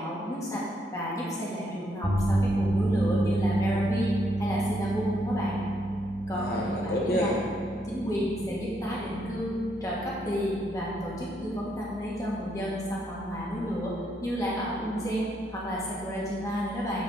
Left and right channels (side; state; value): both; normal; correlation 0.75